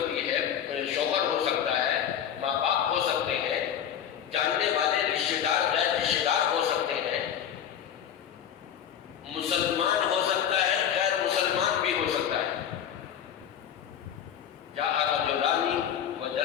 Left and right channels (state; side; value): quieter; right; 9.2 dB